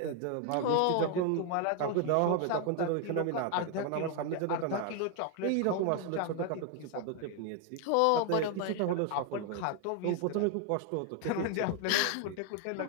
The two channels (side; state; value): both; different; correlation 0.01